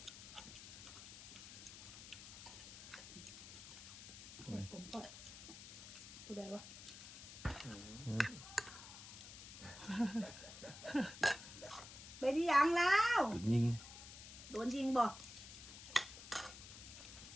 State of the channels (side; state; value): left; noise; hiss, 13 dB below the sound